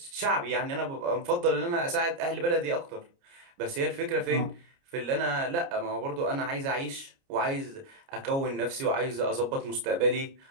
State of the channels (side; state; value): left; late; 29 ms